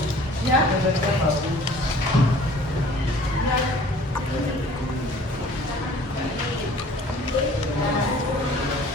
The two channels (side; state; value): both; normal; correlation 0.51